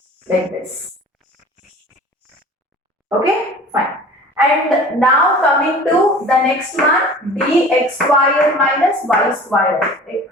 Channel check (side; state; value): both; normal; correlation 0.43